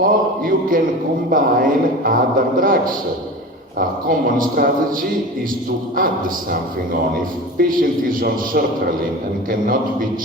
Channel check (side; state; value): both; normal; correlation 0.33